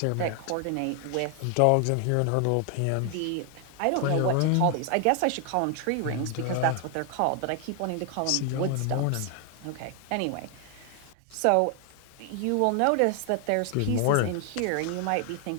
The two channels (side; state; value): both; different; correlation 0.00